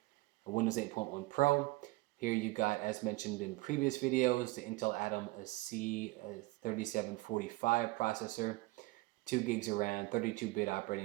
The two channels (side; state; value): left; quieter; 21.8 dB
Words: a Windows 8.1 Pro. Here you got, as mentioned in previous videos, the Intel Atom C3745 processor, 2 gigs of RAM, 32-bit